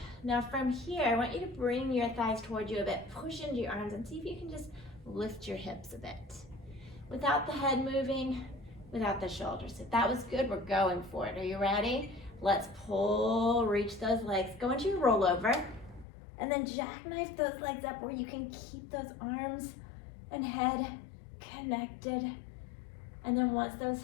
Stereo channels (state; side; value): drops out; right; at 16.1 s